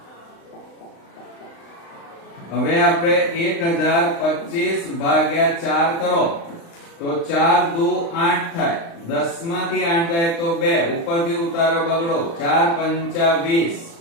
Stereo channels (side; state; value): right; late; 36 ms